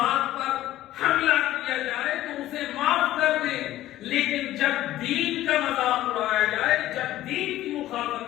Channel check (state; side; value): quieter; right; 14.5 dB